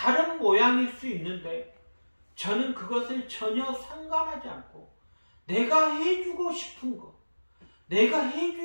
모양일 수 있는데 저는 그것을 전혀 상관하지 않고 내가 해주고 싶은 것, 내가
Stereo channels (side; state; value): both; inverted; correlation -1.00